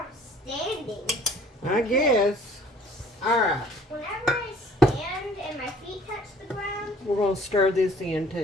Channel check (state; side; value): normal; both; correlation 0.54